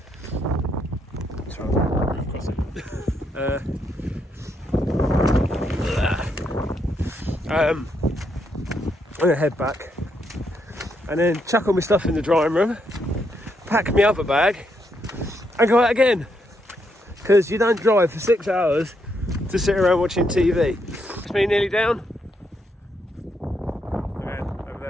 I'm going to head back and then chuck all my stuff in the drying room, pack my other bag and go out again, because you don't drive for 6 hours to sit around watching TV. It's me nearly down. Okay, over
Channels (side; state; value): both; normal; correlation 0.78